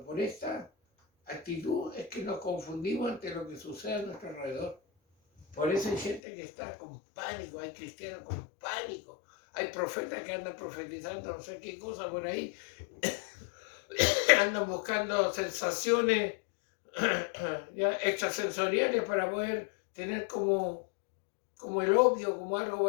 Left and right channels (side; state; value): right; drops out; at 6.2 s